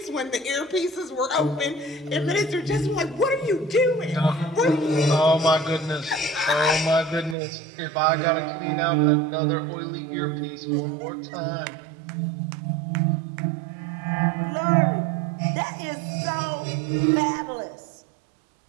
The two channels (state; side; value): drops out; left; at 7.4 s